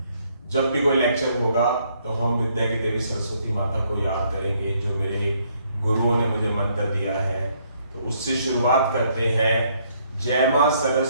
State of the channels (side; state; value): both; inverted; correlation -0.69